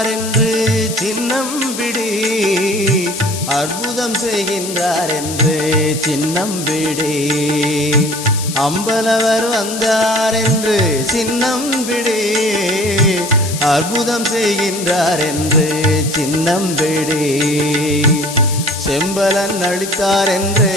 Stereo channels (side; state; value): left; noise; hiss, 8 dB below the sound